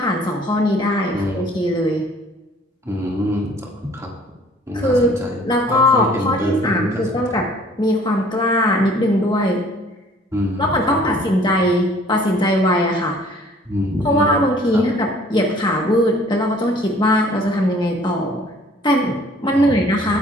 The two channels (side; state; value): both; normal; correlation 0.55